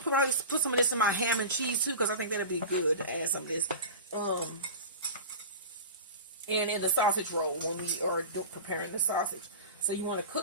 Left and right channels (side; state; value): both; inverted; correlation -0.31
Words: to probably put some of this in my ham and cheese too, because I think that'll be good to add some of this. And in the sausage roll when we are preparing the sausage. So you want to